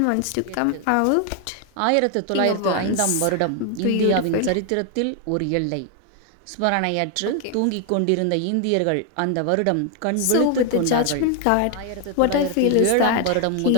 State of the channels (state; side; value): different; both; correlation 0.00